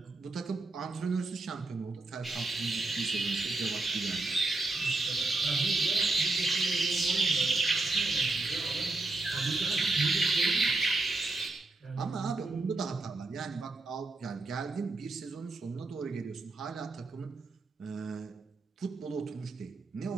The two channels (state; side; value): quieter; left; 3.3 dB